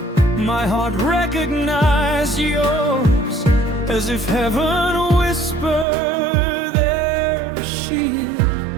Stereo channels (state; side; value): drops out; left; at 5.9 s